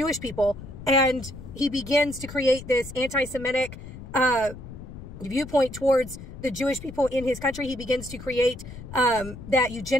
people, and he begins to create this anti-Semitic viewpoint towards the Jewish people in his country. He begins to create that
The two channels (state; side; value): noise; left; rumble, 13 dB below the sound